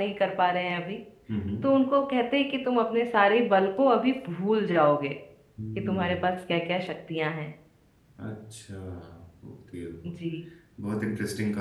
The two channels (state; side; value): identical; both; correlation 1.00